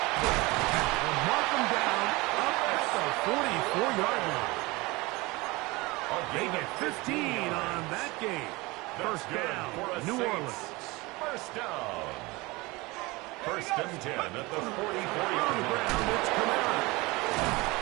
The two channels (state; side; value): quieter; left; 23.1 dB